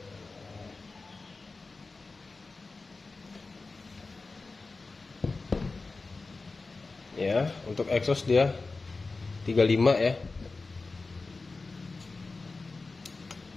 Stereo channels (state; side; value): quieter; right; 3.8 dB